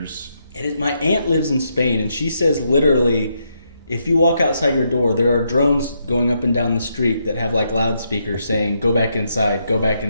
My aunt lives in Spain, and she says literally, if you walk outside your door, there are drones going up and down the street that have like loudspeakers saying, "Go back inside, go back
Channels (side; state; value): both; inverted; correlation -0.79